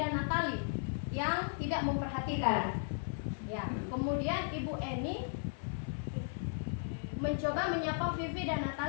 Natali yang tidak memperhatikan. Ya. Kemudian Ibu Eni mencoba menyapa Vivi dan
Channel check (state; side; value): silent; right; 54 dB below the other